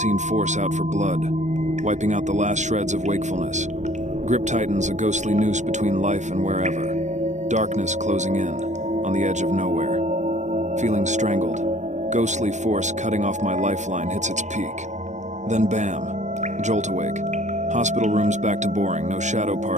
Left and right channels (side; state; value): left; late; 0.34 ms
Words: force out for blood, wiping out the last shreds of wakefulness. Grip tightens a ghostly noose between life and wherever. Darkness closing in, on the edge of nowhere. Feeling strangled. Ghostly force cutting off my lifeline hits its peak. Then bam, jolt awake. Hospital room's back to boring, no shadow